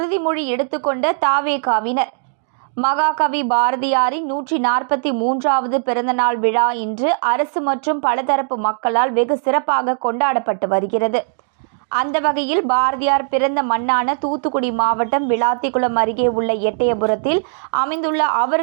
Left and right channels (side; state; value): left; silent; 67 dB below the other